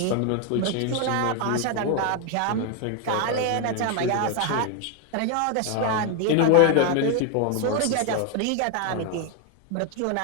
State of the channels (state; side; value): different; both; correlation 0.01